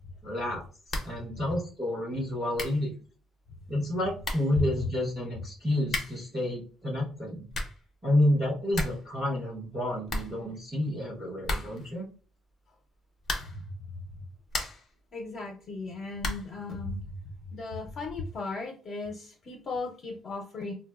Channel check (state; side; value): normal; both; correlation 0.79